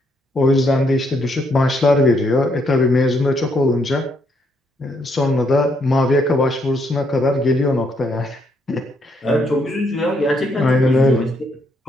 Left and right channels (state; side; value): normal; both; correlation 0.74